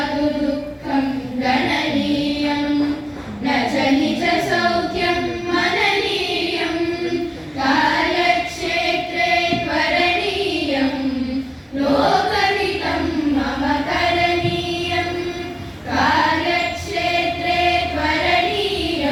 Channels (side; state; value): both; identical; correlation 1.00